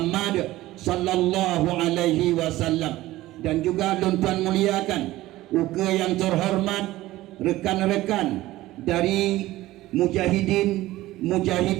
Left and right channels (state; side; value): quieter; left; 16.7 dB